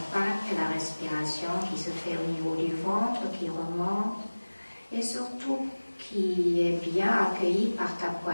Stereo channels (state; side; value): inverted; both; correlation -1.00